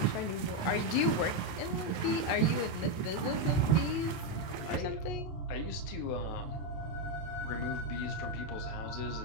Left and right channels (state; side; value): late; right; 28 ms